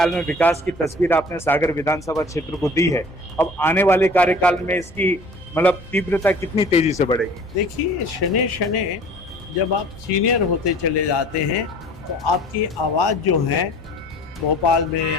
में विकास की तस्वीर आपने सागर विधानसभा क्षेत्र को दी है, अब आने वाले कार्यकाल में इसकी मतलब तीव्रता कितनी तेजी से बढ़ेगी? देखिए, शने शने जब आप सीनियर होते चले जाते हैं तो आपकी आवाज़ जो है भोपाल में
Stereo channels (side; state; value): both; normal; correlation 0.47